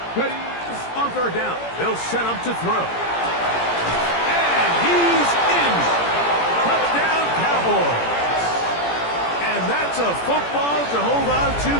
On 3rd down, they'll set up to throw. And he's in. Touchdown, Cowboys. And that's a football to hold on to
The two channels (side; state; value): right; late; 17 ms